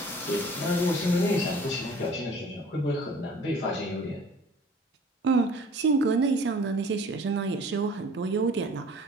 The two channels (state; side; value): normal; both; correlation 0.49